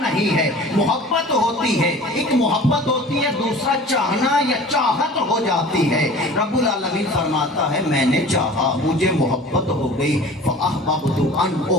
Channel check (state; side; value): normal; both; correlation 0.42